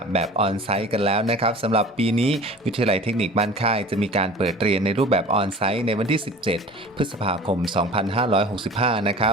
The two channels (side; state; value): both; normal; correlation 0.42